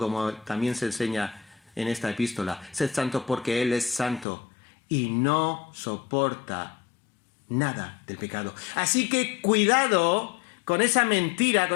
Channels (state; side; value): drops out; right; at 4.2 s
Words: también se enseña en esta epístola. Sed santo porque Él es santo y no soporta nada del pecado. Así que cuidado con esa mentira,